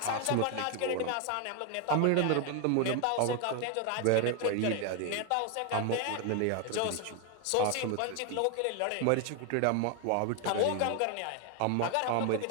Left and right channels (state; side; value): different; both; correlation 0.01